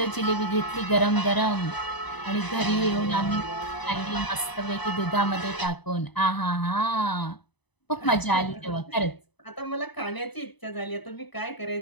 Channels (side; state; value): right; late; 0.99 ms